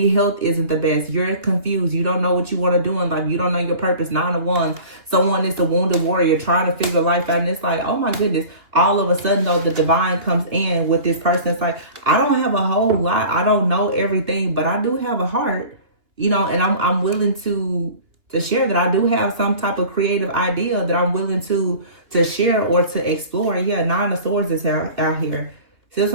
health isn't the best. You're confused. You don't know what you want to do in life. You don't know your purpose. 9 of Wands. Someone is a wounded warrior trying to figure life out. And it's like, oh my goodness. All of a sudden, though, the divine comes in with this person. It's like, I don't have a whole lot. I don't know everything, but I do have a heart, you know, and I'm willing to share that. I do have some type of creative idea that I'm willing to share or to explore. Yeah, 9 of Swords is out here. See what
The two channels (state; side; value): late; left; 2.7 ms